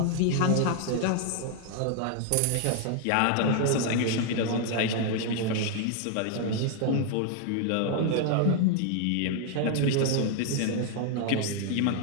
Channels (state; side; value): different; both; correlation 0.00